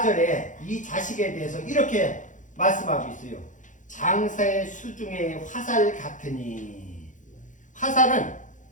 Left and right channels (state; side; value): late; right; 0.37 ms